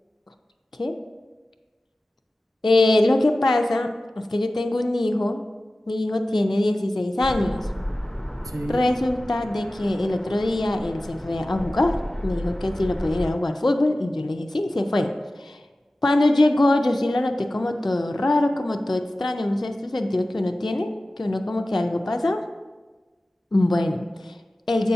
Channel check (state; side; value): normal; both; correlation 0.96